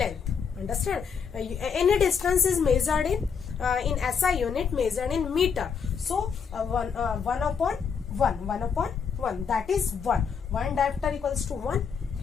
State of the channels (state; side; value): quieter; right; 6.4 dB